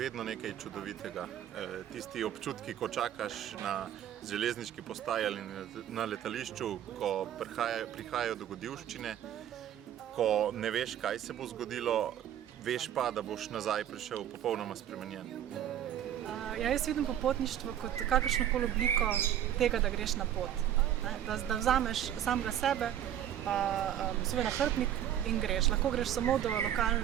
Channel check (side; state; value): left; quieter; 10.8 dB